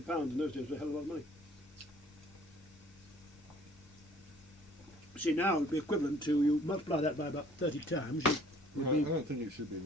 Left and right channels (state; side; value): normal; both; correlation 0.56